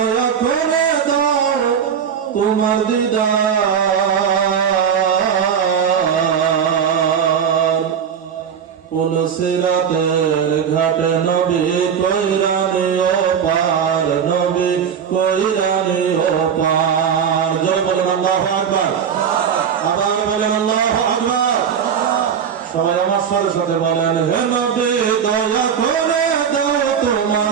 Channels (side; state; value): left; quieter; 7.6 dB